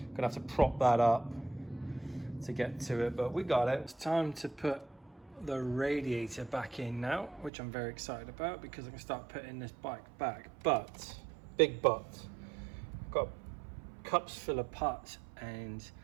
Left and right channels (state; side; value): drops out; left; at 7.5 s